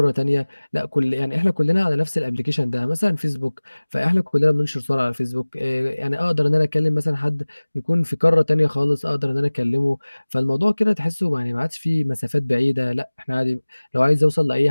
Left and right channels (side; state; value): both; inverted; correlation -1.00